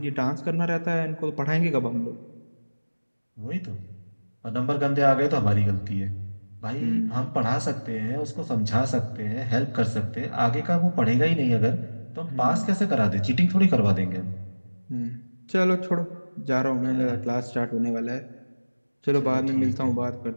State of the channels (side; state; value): both; inverted; correlation -1.00